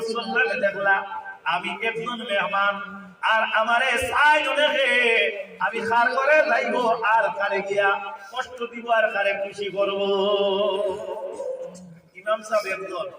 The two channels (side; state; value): both; identical; correlation 1.00